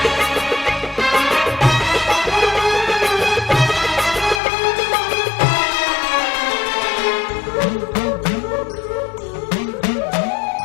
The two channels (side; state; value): right; drops out; at 4.4 s